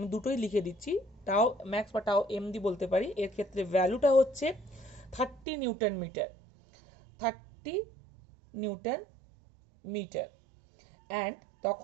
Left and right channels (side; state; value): left; drops out; at 5.5 s